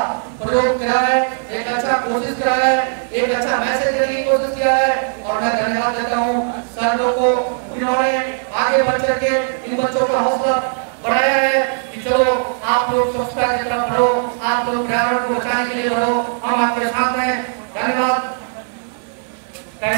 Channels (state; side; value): silent; left; digital silence